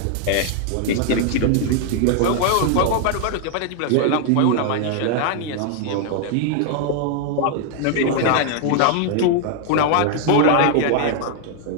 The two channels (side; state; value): both; different; correlation 0.00